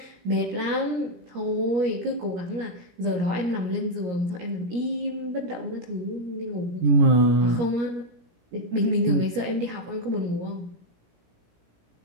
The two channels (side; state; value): left; late; 17 ms